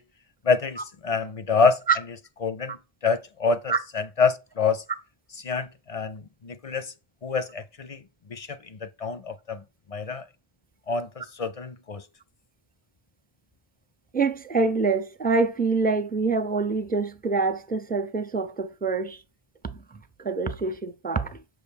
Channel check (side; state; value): right; late; 1.6 ms